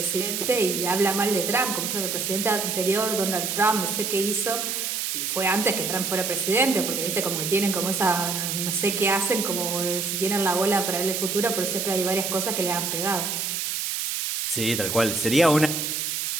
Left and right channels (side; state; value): right; noise; hiss, 2 dB below the sound